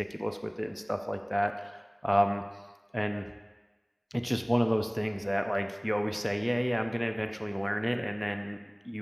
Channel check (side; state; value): both; identical; correlation 1.00